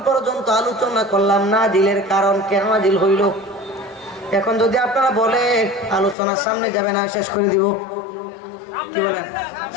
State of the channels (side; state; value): right; drops out; at 6.2 s